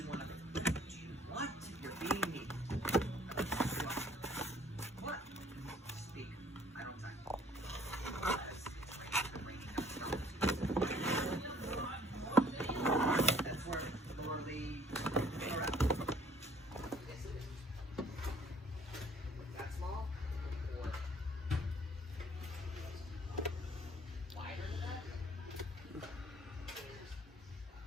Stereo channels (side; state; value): both; normal; correlation 0.57